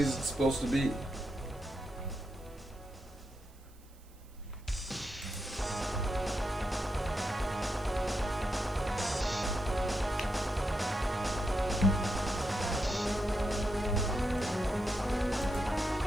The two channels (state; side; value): noise; right; hiss, 27 dB below the sound